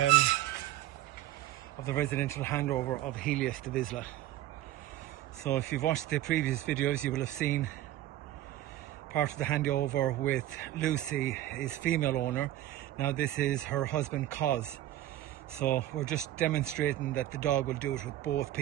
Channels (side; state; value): left; quieter; 14.0 dB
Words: of the residential handover of Helios to Vizsla. So if you've watched the previous videos, you will have seen part of the handover with Lucy, his female owner. Now this is her husband, Cos. So we're just demonstrating that the dog will do it with both